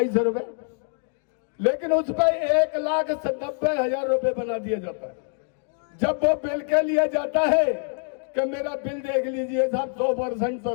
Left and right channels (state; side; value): silent; right; 55 dB below the other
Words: रुपए। लेकिन उस पर 1,90,000 रुपए बना दिया जाता है। जब वो बिल के लिए जाता है कि मेरा बिल देख लीजिए साहब, 100%